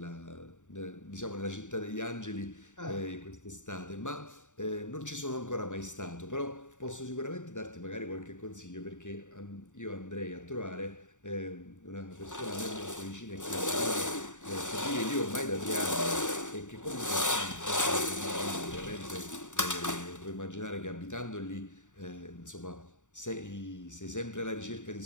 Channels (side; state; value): right; late; 0.86 ms